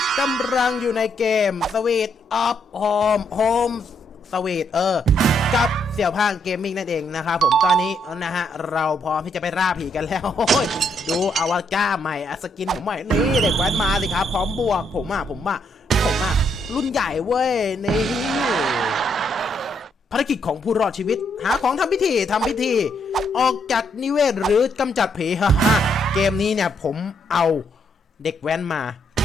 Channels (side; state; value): both; normal; correlation 0.75